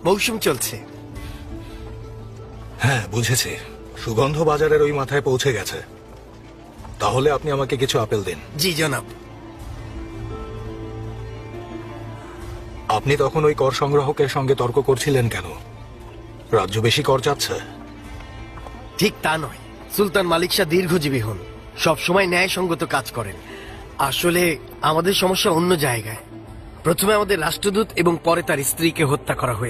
মৌসুম চলছে। হ্যাঁ, বুঝেছি। সুগন্ধ বাজারের ওই মাথায় পৌঁছে গেছে। তাহলে আপনি আমাকে কিছু আপেল দিন। জি জনাব। আপনি তখন ওই কর সংগ্রাহকের সঙ্গে তর্ক করছিলেন কেন? রাজ্য বেশি কর চাচ্ছে? ঠিক তা নয়, সুলতান মালিক শাহ দীর্ঘজীবী হন, সবসময় ন্যায়সঙ্গত কাজ করেন। আসলে আমাদের সমস্যা অন্য জায়গায়। প্রথমে আমাদের রাষ্ট্রদূত এবং পরে তার স্ত্রীকে হত্যা করা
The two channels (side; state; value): both; identical; correlation 1.00